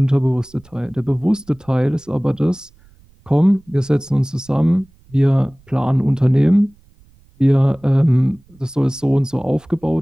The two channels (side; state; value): right; noise; rumble, 30 dB below the sound